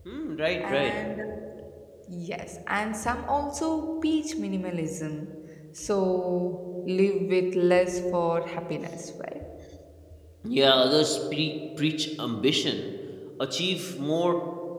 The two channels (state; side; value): identical; both; correlation 1.00